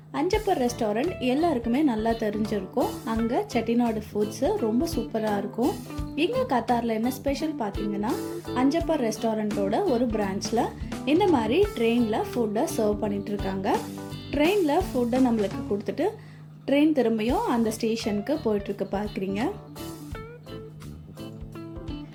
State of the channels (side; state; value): both; identical; correlation 1.00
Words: அஞ்சப்பர் ரெஸ்டாரண்ட் எல்லாருக்குமே நல்லா தெரிஞ்சிருக்கும். அங்கே செட்டிநாடு ஃபுட்ஸு ரொம்ப சூப்பராக இருக்கும். இங்கே கத்தாரில் என்ன ஸ்பெஷல் பார்த்தீங்கன்னா, அஞ்சப்பர் ரெஸ்டாரண்ட்டோட ஒரு பிரான்ச்சில் இந்த மாதிரி ட்ரெயினில் ஃபுட்டை சர்வ் பண்ணிகிட்ருக்காங்க. ட்ரெயினில் ஃபுட்டை நம்மளுக்கு கொடுத்துட்டு ட்ரெயின் திரும்பியும் அந்த ஸ்டேஷனுக்கு போயிட்டுருக்கு பார்க்குறீங்க.